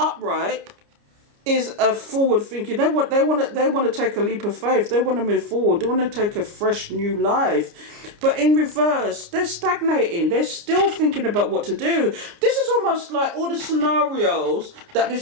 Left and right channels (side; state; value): left; late; 29 ms